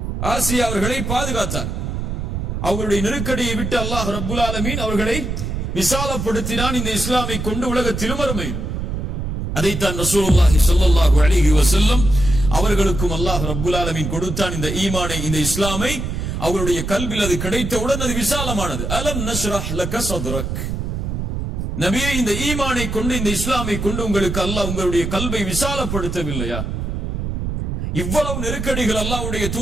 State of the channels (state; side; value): noise; right; rumble, 3 dB below the sound